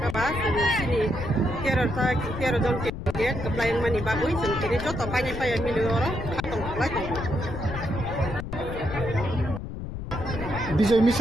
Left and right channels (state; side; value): noise; left; rumble, 7 dB below the sound